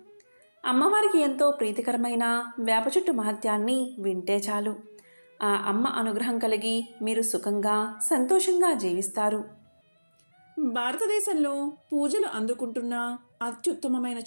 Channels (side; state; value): both; inverted; correlation -1.00